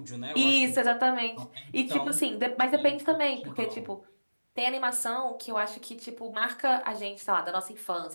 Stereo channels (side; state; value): both; inverted; correlation -1.00